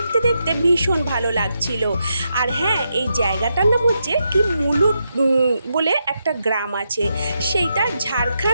দেখতে ভীষণ ভালো লাগছিল। আর হ্যাঁ, এই জায়গাটার নাম হচ্ছে কি মুলুট বলে একটা গ্রাম আছে, সেইটা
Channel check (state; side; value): inverted; both; correlation -0.83